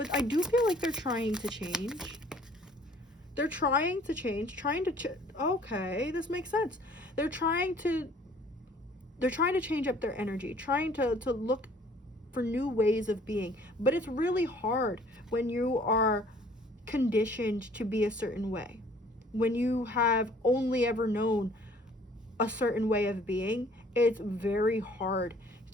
I do feel like they're trying to change. They're trying to change, okay, this makes sense. They're trying to change up their energy, trying to look for new ways of being. But it's really hard when you are conditioned to be a certain way, when you have only ever known a certain way of being. It's very hard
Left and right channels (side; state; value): both; normal; correlation 0.56